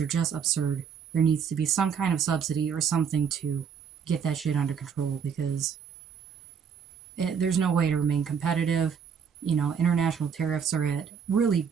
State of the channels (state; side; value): quieter; left; 7.0 dB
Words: just absurd. There needs to be some kind of subsidy or something to get that shit under control, because there's no way to remain competitive. International tariffs are at really